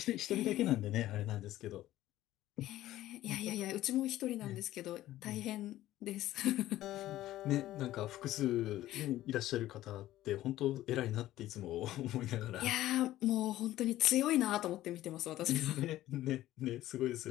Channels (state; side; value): quieter; right; 14.7 dB